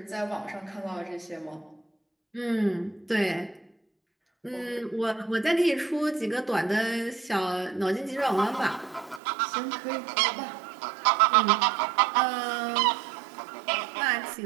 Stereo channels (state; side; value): drops out; left; at 9.2 s